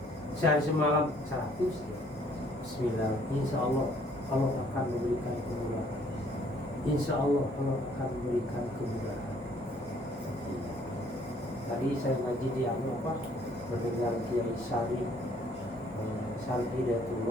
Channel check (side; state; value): both; normal; correlation 0.61